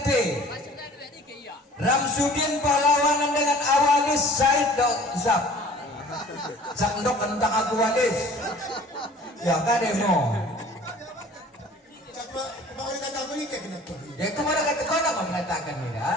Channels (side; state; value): both; normal; correlation 0.48